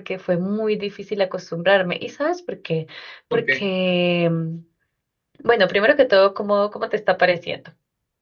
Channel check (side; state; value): both; identical; correlation 1.00